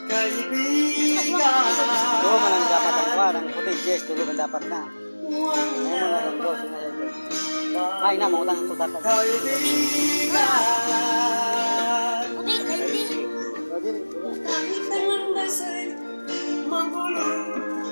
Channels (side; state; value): both; inverted; correlation -1.00